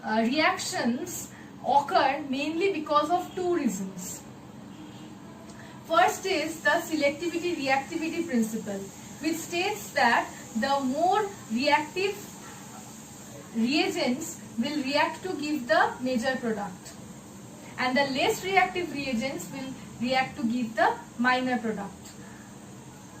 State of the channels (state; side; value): identical; both; correlation 1.00